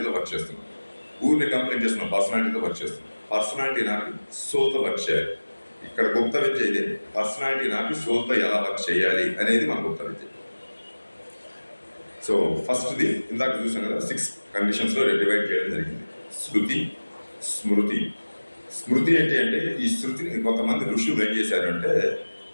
వర్క్ చేస్తున్నావు. ఊరిని కంప్లైంట్ చేస్తున్నావు, పర్సనాలిటీతో వర్క్ చేస్తున్నావు. పర్సనాలిటీ నాకు సోల్తో వర్క్ చేయాలి. ఇక్కడ గుప్త విద్య ఇదే, పర్సనాలిటీ నాకు సోల్తో ఎలా వర్క్ చేయాలి అనేది మన గుప్త విద్య. సో ఫస్ట్ది ఇందాక చూసాం కదా, 6 కండిషన్స్లో డివైడ్ చేయడం జరిగింది. శృతి, స్మృతి. స్మృతి ఏంటి అంటే ఈ శృతిని కొంతమంది ఋషులు ఏం చేశారు అంటే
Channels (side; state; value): both; inverted; correlation -1.00